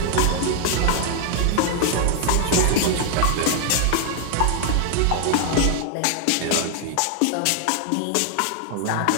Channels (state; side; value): different; both; correlation 0.00